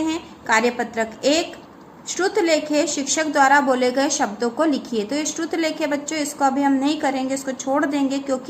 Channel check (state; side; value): identical; both; correlation 1.00